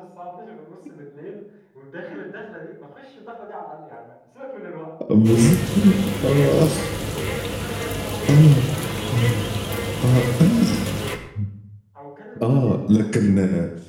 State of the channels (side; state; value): both; identical; correlation 1.00